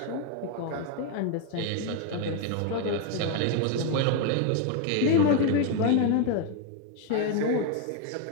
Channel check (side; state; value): both; different; correlation 0.01